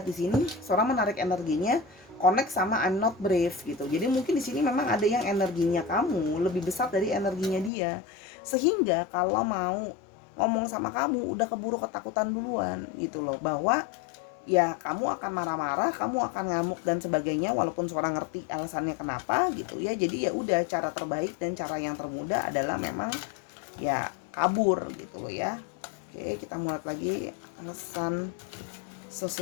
di sini, Sora menarik energinya connect sama I'm not brave gitu. Jadi mungkin di sini memang ada yang energinya kamu lebih besar dari energinya dia. Sehingga kalau mau ngomong sama kamu udah keburu ketakutan duluan gitu loh, bahwa ya kamu akan marah-marah, kamu akan ngamuk dan sebagainya, walaupun seorang ngerti alasannya kenapa gitu ya. Jadi ya udah, cara terbaik dan cara yang termudah adalah memang ya kabur gitu loh ya. Oke, kita mulai lagi alasan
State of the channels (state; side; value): drops out; right; at 7.7 s